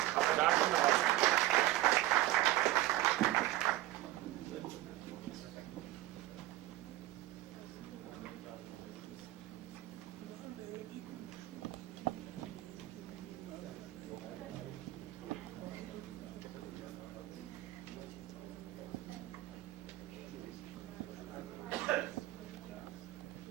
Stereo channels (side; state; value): left; quieter; 16.3 dB